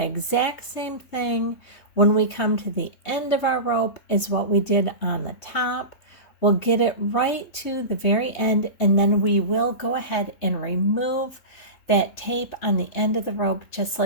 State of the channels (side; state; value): right; late; 3.2 ms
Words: exact same thing when we come to the end of our rope as what we did on the top. We'll get it right to the very end, and then we will go ahead and remove that tape on the end of the rope just